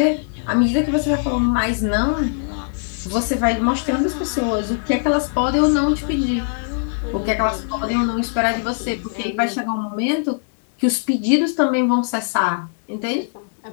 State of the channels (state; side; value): silent; right; 65 dB below the other